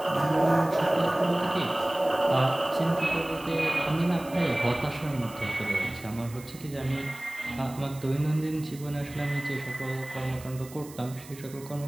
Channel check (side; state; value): right; noise; hiss, 19 dB below the sound